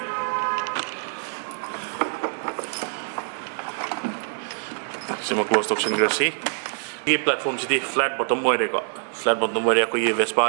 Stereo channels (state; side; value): silent; left; digital silence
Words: sima closed option grasi ये platform सिटी flat bottom मोय रे को flat bottom मोय रे को ये